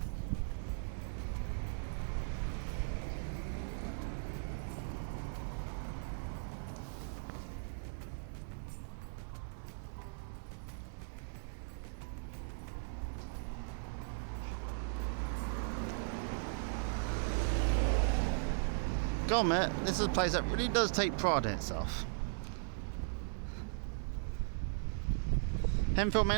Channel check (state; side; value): silent; left; 52 dB below the other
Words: God, mate, this is a place that really does take pride in itself. Henfield may